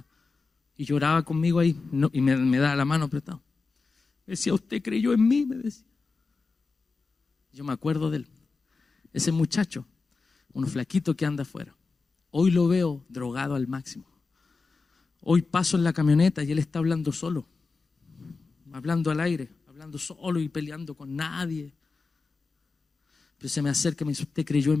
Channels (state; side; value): quieter; right; 4.2 dB